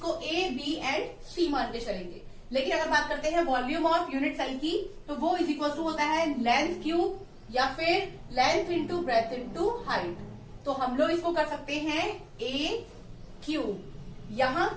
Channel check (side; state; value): both; identical; correlation 1.00